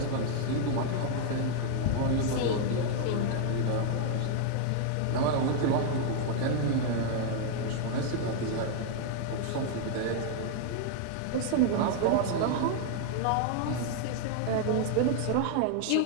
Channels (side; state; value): both; different; correlation 0.00